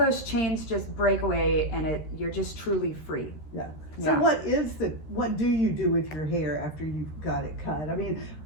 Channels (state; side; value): late; right; 13 ms